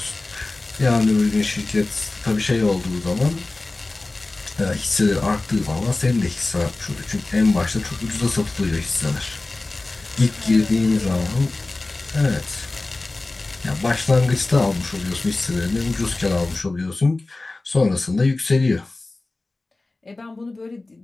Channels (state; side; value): quieter; right; 3.1 dB